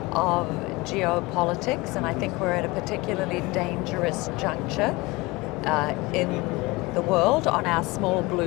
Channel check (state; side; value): quieter; right; 23.0 dB